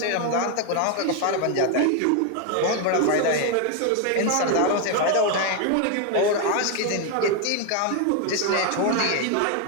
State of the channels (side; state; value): both; different; correlation 0.01